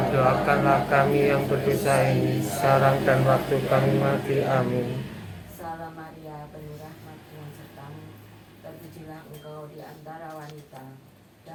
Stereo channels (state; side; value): identical; both; correlation 1.00